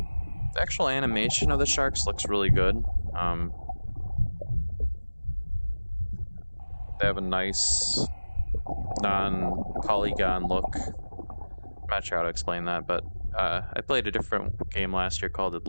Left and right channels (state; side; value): inverted; both; correlation -1.00